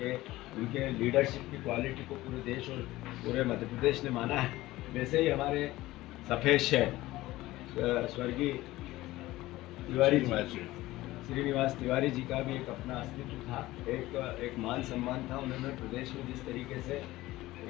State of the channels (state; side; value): quieter; right; 17.6 dB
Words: लीडरशिप की क्वालिटी को पूरे देश और पूरे मध्य प्रदेश ने माना है। वैसे ही हमारे सफ़ेद शहर स्वर्गीय तिवारी जी, श्रीनिवास तिवारी जी का भी एक अपना अस्तित्व था, एक मान सम्मान था। उन्होंने प्रदेश में जिस तरीके से